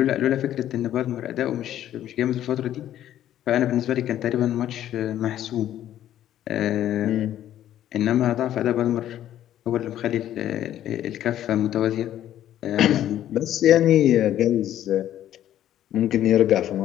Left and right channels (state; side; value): quieter; right; 11.8 dB